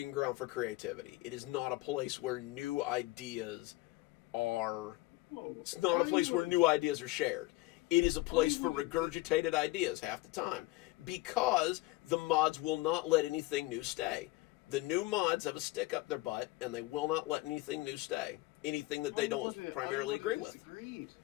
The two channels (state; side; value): quieter; right; 19.7 dB